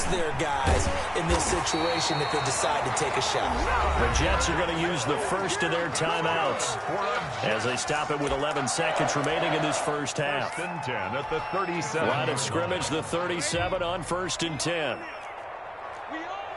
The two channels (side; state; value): both; identical; correlation 1.00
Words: their guys in this situation if they decide to take a shot. The Jets are going to use the first of their timeouts as they stop it with 11 seconds remaining in this first half. First and 10 at the 37. Line of scrimmage, the 37 on first and 10.